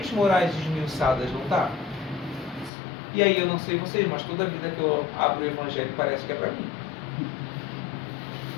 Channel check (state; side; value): drops out; right; at 2.7 s